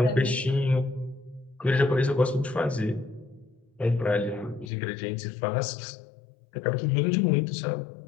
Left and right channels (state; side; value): drops out; right; at 4.7 s